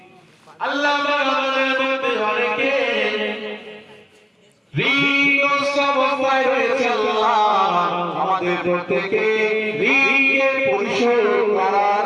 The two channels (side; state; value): both; identical; correlation 1.00